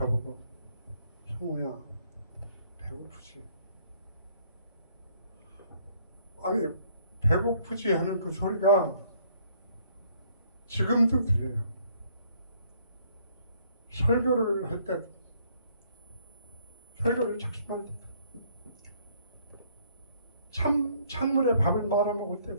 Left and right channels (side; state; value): both; inverted; correlation -0.65